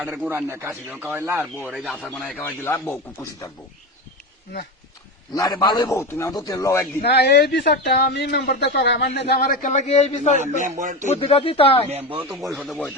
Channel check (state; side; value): normal; both; correlation 0.21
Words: গুঁড়া আনে কাশি খাওয়াইলা আর বউ এই যে আচার বানাই খাওয়াই দিলা বউ খুব খুশি থাকবো না না রে ভালোই বউ তুমি আমার তো তেল লও একদিন না এই বিচারটা আমি মেম্বার দা করা আমার নেতা আমার একটা লাগে এই বিচার মেম্বার বুদ্ধিটা দিতাম মেম্বার তো পরিষদে